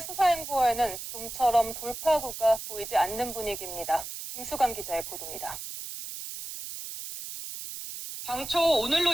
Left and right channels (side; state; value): right; noise; hiss, 9 dB below the sound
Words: 수사 행보에는 좀처럼 돌파구가 보이지 않는 분위기입니다. 김수강 기자의 보도입니다. 당초